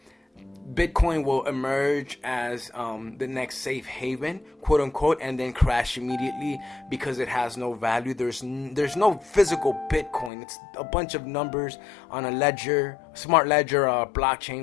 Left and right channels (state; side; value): drops out; right; at 10.3 s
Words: Bitcoin will emerge as the next safe haven, quote unquote, and then crash immediately because it has no value. There's no physical Bitcoin. It's a bunch of numbers on a ledger, smart ledger,